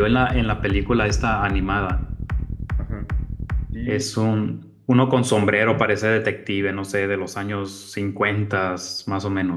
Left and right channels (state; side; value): identical; both; correlation 1.00